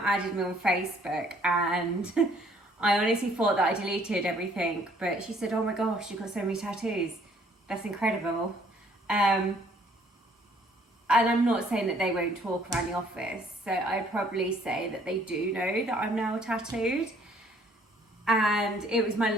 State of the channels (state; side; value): normal; both; correlation 0.61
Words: me on Facebook and I honestly thought that I deleted everything, but she said, oh my gosh, you've got so many tattoos. That's incredible. And I'm not saying that they won't talk around the office, so I'd probably say that they do know that I'm now tattooed. And it was my